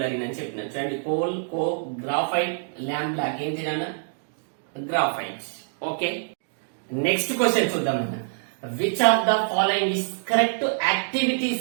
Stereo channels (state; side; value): silent; left; digital silence